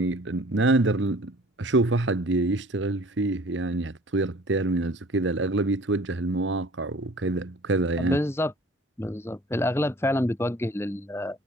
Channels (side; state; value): both; normal; correlation 0.49